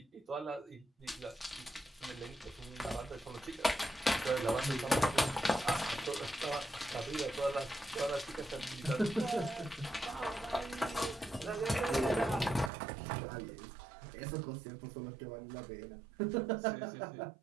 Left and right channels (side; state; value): left; drops out; at 12.7 s